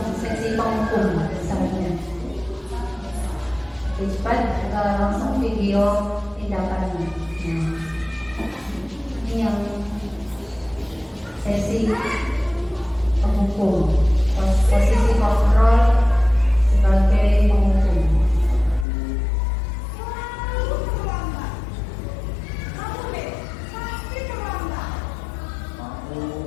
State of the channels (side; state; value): right; drops out; at 18.9 s